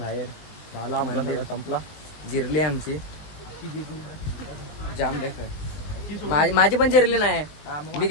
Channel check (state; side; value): late; right; 19 ms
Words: झाला मंदिर संपला. जिरली आमची जाम देखत. माझी पण जिरली नाही. मी